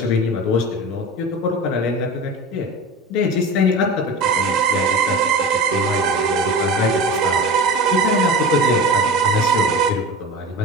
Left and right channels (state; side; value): normal; both; correlation 0.31